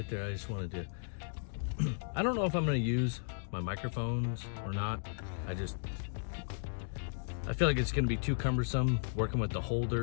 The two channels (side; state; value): right; silent; digital silence